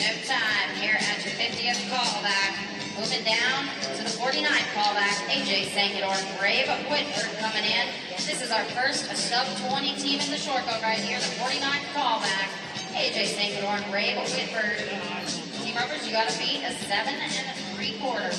time here at your 50th callback. Moving down to the 49th callback, AJ Sankador and Ray Whitford coming in. This is our first sub-20 team in the short boat right here, the 49th callback. AJ Sankador and Ray Whitford. Team Rovers, you got to beat a 7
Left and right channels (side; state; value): both; identical; correlation 1.00